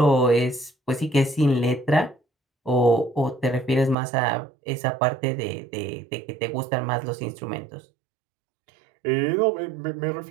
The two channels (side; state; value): left; drops out; at 4.0 s